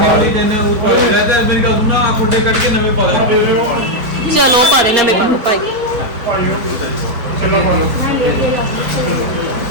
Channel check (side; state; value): left; late; 4.3 ms